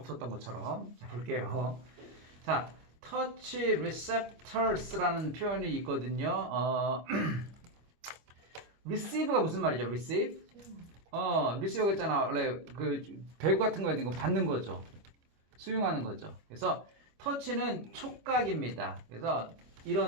것처럼. 자, 볼게요. 자, touch receptors라는 표현이 있거든요. receive가 무슨 말이죠? receive? receive가 있잖아. 원래 그 배구 같은 거 있는 거 받는 거죠. 수용하는 거죠. 그래서 touch는 촉각입니다. 그래서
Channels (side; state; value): left; late; 25 ms